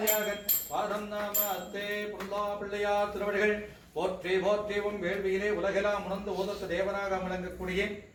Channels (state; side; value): identical; both; correlation 1.00